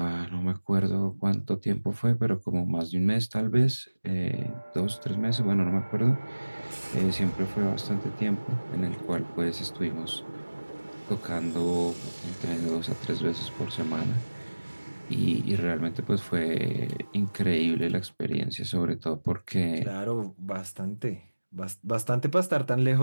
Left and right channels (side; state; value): both; inverted; correlation -1.00